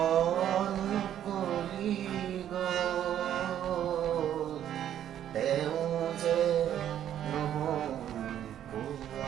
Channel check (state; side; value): quieter; left; 10.6 dB